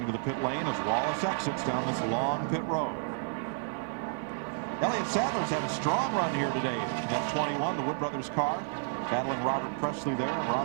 to the pit lane as Wallace exits down this long pit road. Elliott Sadler's had a strong run here today. That 21, the Wood Brothers car, battling Robert Presley there and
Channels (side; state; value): left; silent; 57 dB below the other